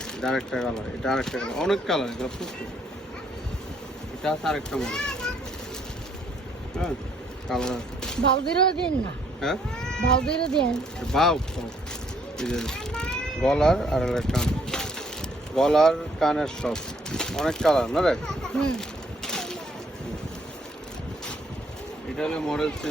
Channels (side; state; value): both; normal; correlation 0.67